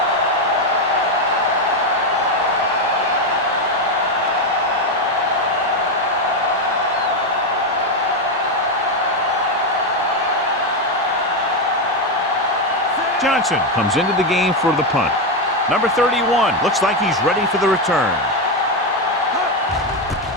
Johnson comes into the game for the punt. Number 31 looks like he's ready for the return.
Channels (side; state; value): both; normal; correlation 0.08